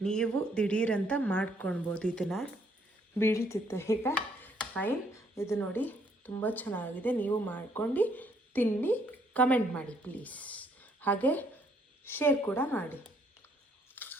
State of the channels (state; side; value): normal; both; correlation 0.68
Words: ನೀವು ದಿಢೀರಂತ ಮಾಡ್ಕೊಳ್ಬೋದು ಇದನ್ನು, ಬೀಳ್ತಿತ್ತು ಈಗ. ಫೈನ್, ಇದು ನೋಡಿ ತುಂಬ ಚೆನ್ನಾಗಿದೆ. ನೀವು ಮಾಡ್ಕೊಂಡು ತಿನ್ನಿ, ಕಮೆಂಟ್ ಮಾಡಿ ಪ್ಲೀಸ್. ಹಾಗೆ ಶೇರ್ ಕೂಡ ಮಾಡಿ.